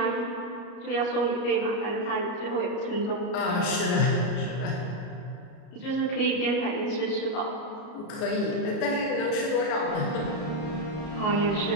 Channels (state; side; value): late; right; 33 ms